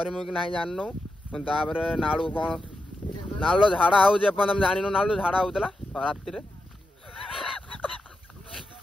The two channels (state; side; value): normal; both; correlation 0.88